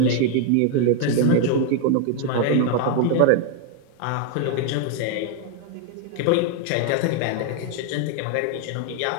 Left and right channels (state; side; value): different; both; correlation 0.00